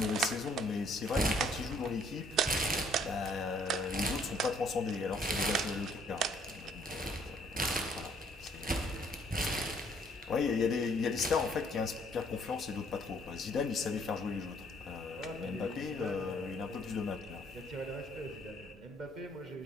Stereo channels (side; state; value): both; normal; correlation 0.63